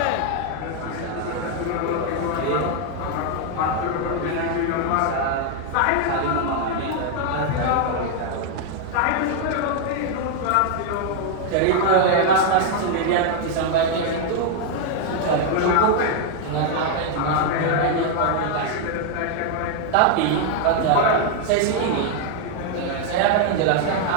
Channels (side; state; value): both; different; correlation 0.00